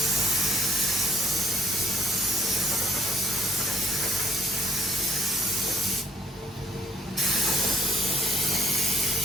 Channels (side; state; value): both; normal; correlation 0.65